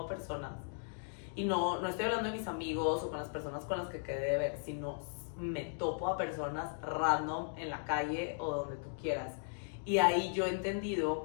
personas y no estoy hablando de mis amigos o con las personas con las que quedé de ver, sino me topo a personas random en la calle o donde tú quieras. Y ahí yo he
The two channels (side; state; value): right; silent; digital silence